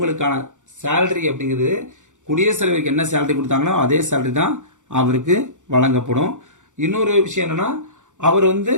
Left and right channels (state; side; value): late; left; 0.86 ms